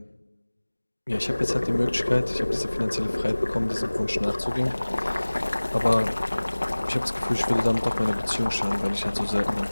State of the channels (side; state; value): both; inverted; correlation -1.00